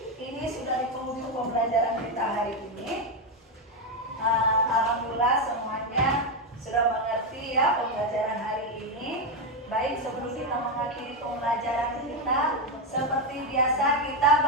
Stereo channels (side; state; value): both; normal; correlation 0.07